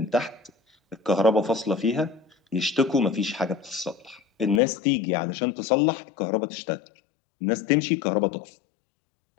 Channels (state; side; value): drops out; right; at 4.6 s